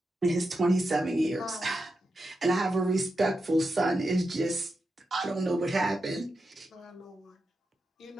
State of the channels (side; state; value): both; normal; correlation 0.88